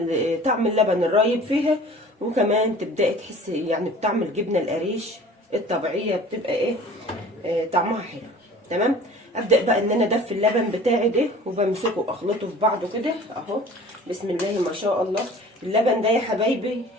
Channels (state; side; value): normal; both; correlation 0.45